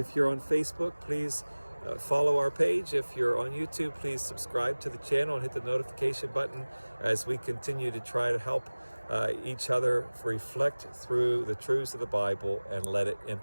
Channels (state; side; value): inverted; both; correlation -1.00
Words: you're on Facebook, please follow our page. If you're on YouTube, please subscribe to the channel and hit the notification button as we continue to try to help each other reflect through the truths of the Bible and let it